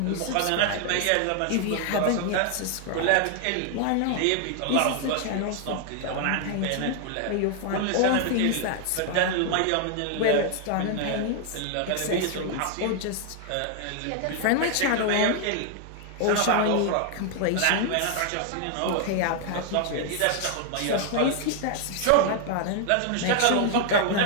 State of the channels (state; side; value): different; both; correlation 0.00